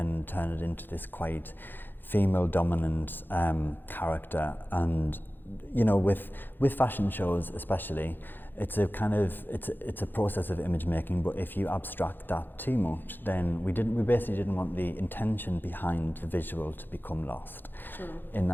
turn it into this quite female dominant character. And with fashion shows especially, it's a kind of it's a process of image making, but if you abstract that too much, then we basically didn't want the intention behind the visual to become lost in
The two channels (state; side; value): late; right; 0.094 ms